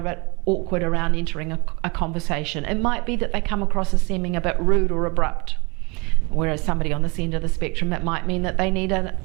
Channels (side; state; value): left; quieter; 28.7 dB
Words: bit awkward around entering a conversation. It might be that they come across as seeming a bit rude or abrupt. Whereas somebody on this end of the spectrum, it might mean that they need